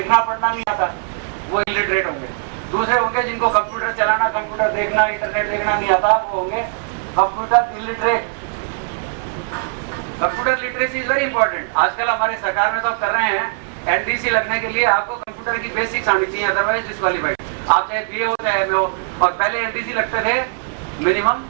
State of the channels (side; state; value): left; silent; 66 dB below the other